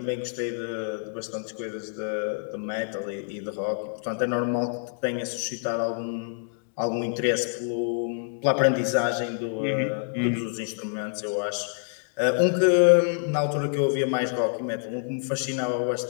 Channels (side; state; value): right; silent; digital silence